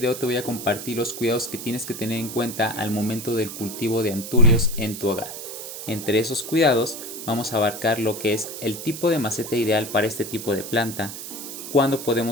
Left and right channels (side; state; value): right; noise; hiss, 9 dB below the sound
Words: te voy a compartir los cuidados que tienes que tener en cuenta al momento del cultivo de anturios en tu hogar. Entre esos cuidados vamos a abarcar lo que es el tipo de maceta ideal para este tipo de planta, cuándo